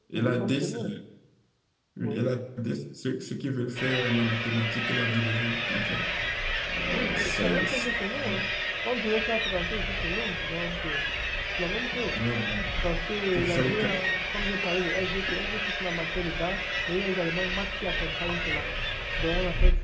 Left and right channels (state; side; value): identical; both; correlation 1.00